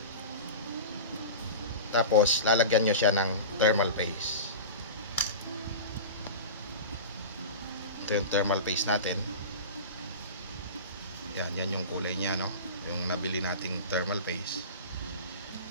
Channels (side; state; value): both; inverted; correlation -0.31